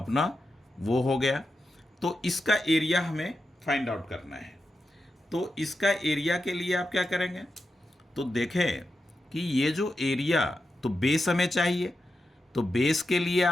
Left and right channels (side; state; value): both; normal; correlation 0.89